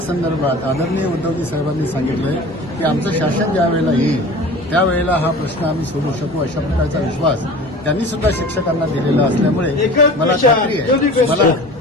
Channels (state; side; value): normal; both; correlation 0.39